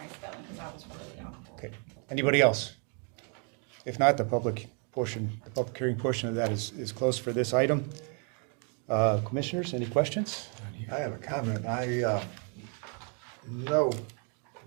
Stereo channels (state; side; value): quieter; left; 38.7 dB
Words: spelling, cause I was really on. Okay. Anybody else? If not, the public hearing portion of that is closed for this item. Commissioners, any questions? I have a comment. I know